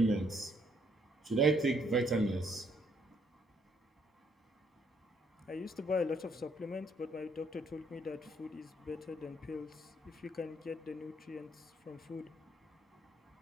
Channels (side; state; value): both; normal; correlation 0.68